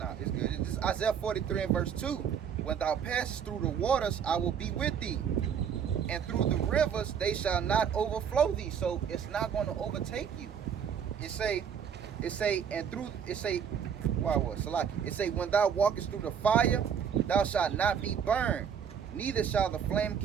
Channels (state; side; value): quieter; left; 7.7 dB